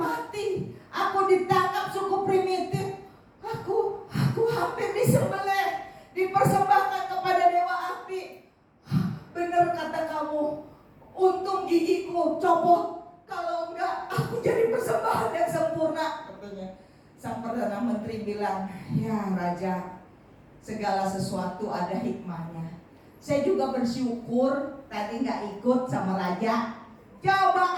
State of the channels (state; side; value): identical; both; correlation 1.00